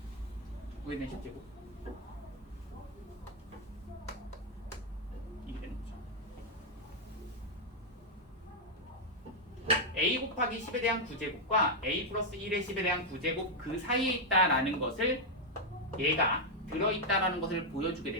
이게 되는 거죠. a 곱하기 10에 대한 9제곱과 a 플러스 1의 10에 대한 9제곱 그 사이에 있다라는 것을 얘가 들어있다라는 것을 보여주게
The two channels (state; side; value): normal; both; correlation -0.01